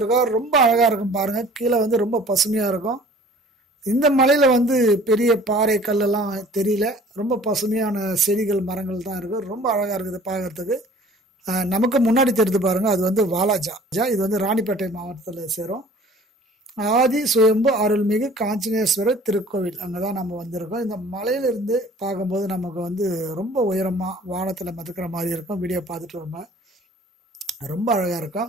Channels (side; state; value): both; normal; correlation 0.50